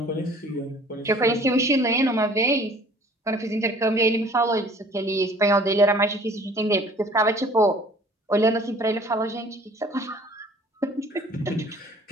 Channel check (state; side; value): normal; both; correlation 0.51